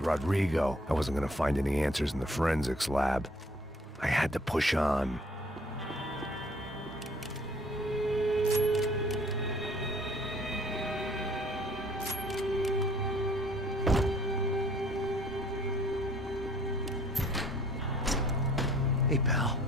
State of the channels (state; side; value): normal; both; correlation 0.58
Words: I wasn't gonna find any answers in the forensics lab. I had to push on. Hey, pal.